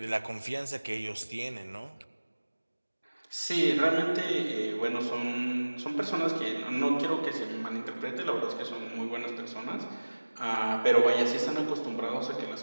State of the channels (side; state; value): both; inverted; correlation -1.00